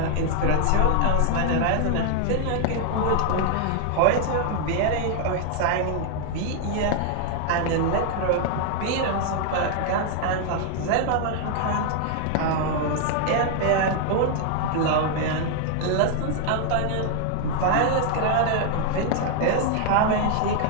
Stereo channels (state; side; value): different; both; correlation 0.00